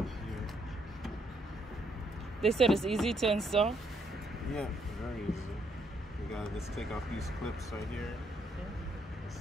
They said it's easy to install. Yeah, very easy. You gotta just take off these clips right here. Yeah.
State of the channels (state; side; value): normal; both; correlation 0.73